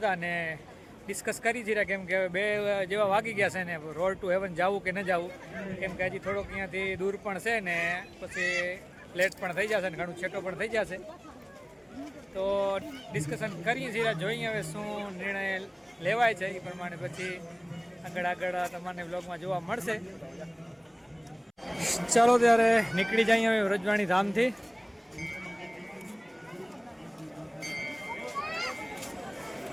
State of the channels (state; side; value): identical; both; correlation 1.00